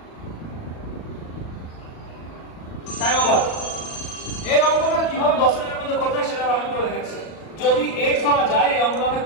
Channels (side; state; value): right; late; 38 ms